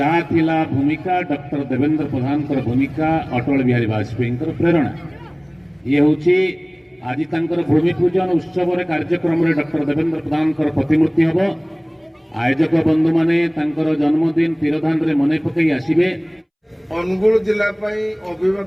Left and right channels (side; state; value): both; identical; correlation 1.00